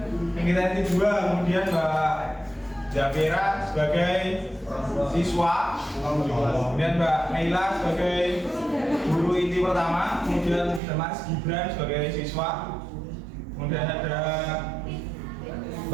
kegiatan 2, kemudian Mbak Jafira sebagai siswa, kemudian Mbak Naila sebagai guru inti pertama, kemudian Mas Gibran sebagai siswa, kemudian ada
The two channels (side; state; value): left; drops out; at 10.8 s